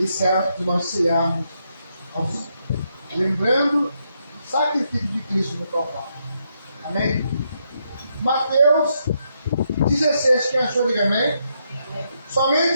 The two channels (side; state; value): both; inverted; correlation -0.79